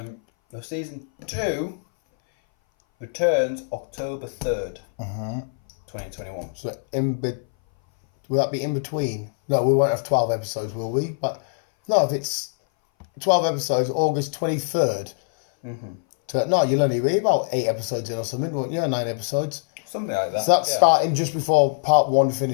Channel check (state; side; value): silent; right; 60 dB below the other